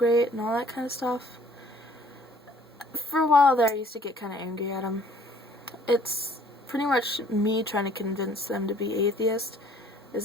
and all that kind of stuff. For a while there, I used to get kind of angry at them. It's pretty much me trying to convince them to be atheist is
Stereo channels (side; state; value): both; normal; correlation 0.56